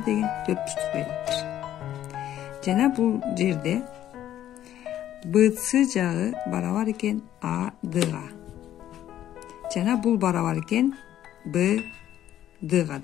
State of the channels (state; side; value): quieter; right; 11.9 dB